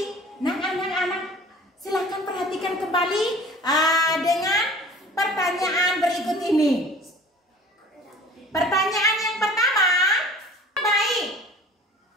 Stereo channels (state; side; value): normal; both; correlation 0.46